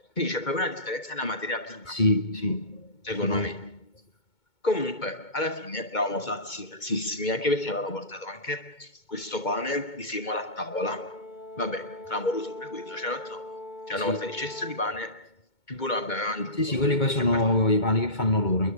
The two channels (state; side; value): late; right; 2.2 ms